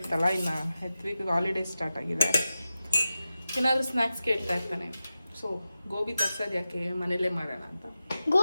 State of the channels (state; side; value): inverted; both; correlation -0.93